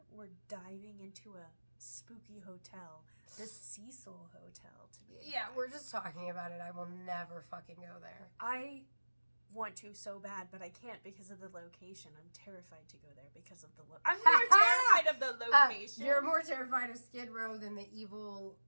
we're diving into a spooky hotel. The Cecil Hotel, to be exact. Yeah, we're just talking about it. I will never fucking go there. I want to so bad, but I can't because of the location. I'm terrified to go there because of the I'm more terrified of the location. You're more terrified of Skid Row than the evil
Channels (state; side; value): inverted; both; correlation -1.00